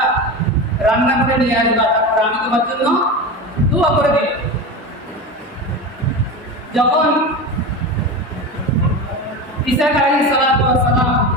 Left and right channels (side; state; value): both; normal; correlation 0.25